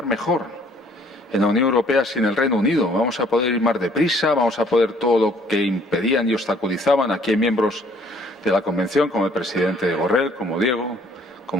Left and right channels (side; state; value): both; normal; correlation 0.60